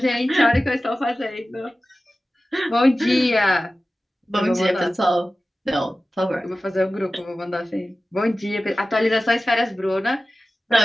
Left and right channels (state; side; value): normal; both; correlation 0.96